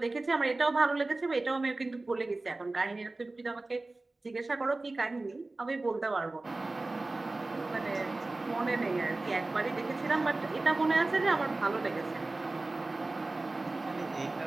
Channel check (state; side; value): quieter; left; 3.1 dB